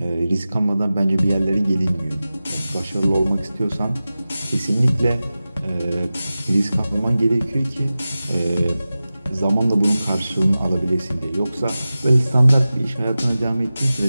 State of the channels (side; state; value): both; inverted; correlation -0.95